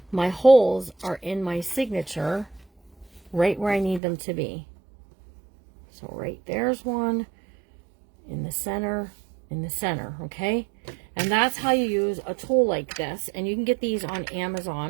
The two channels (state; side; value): drops out; left; at 4.0 s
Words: my holes are in my signature right where I need them to be. So right there's one in the center, okay? And that's how you use a tool like this. And you can get these on